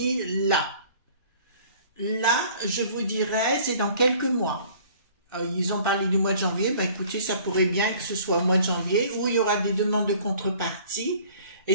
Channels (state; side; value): inverted; both; correlation -0.52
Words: là. Là, je vous dirais, c'est dans quelques mois. Ils ont parlé du mois de janvier. Ben, écoutez, ça pourrait bien que ce soit au mois de janvier où il y aura des demandes de contrepartie. Et